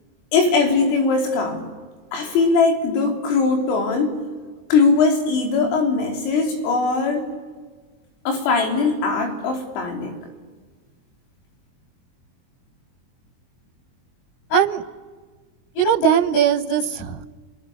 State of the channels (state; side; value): late; right; 23 ms